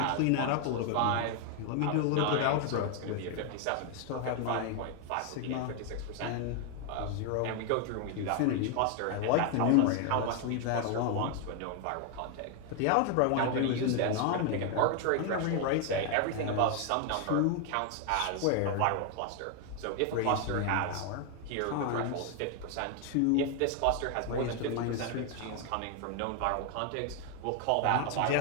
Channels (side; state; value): both; different; correlation 0.01